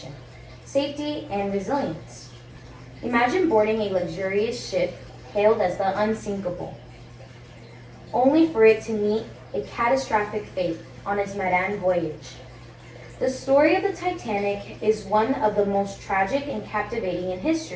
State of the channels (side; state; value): both; identical; correlation 1.00